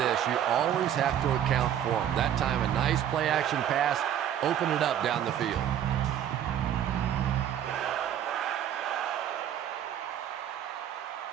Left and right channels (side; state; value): left; quieter; 10.2 dB